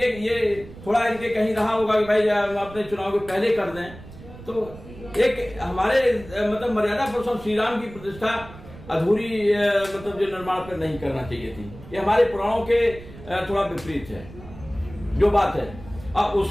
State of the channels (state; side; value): noise; right; rumble, 17 dB below the sound